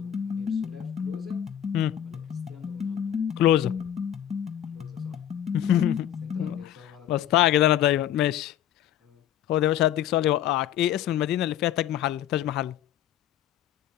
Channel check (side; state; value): right; quieter; 11.1 dB